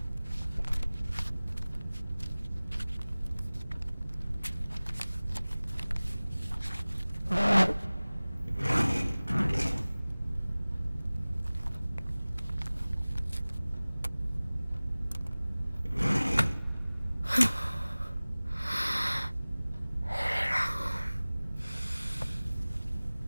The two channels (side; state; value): both; inverted; correlation -0.99